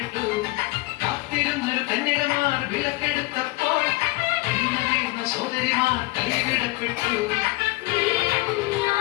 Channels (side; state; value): right; quieter; 21.3 dB